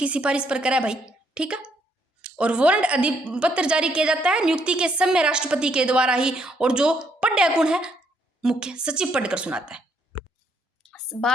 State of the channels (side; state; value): both; normal; correlation 0.71